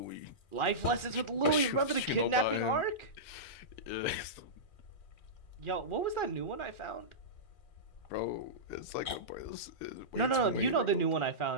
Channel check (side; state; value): right; late; 2.4 ms